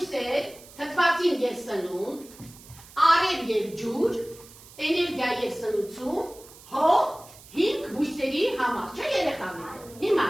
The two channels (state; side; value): noise; right; hiss, 21 dB below the sound